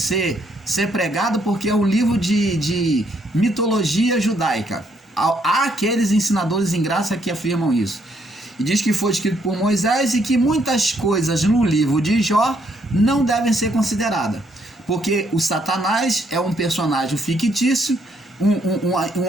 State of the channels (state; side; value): normal; both; correlation 0.71